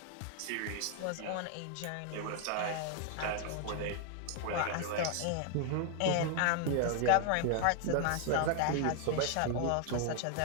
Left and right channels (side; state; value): both; different; correlation 0.00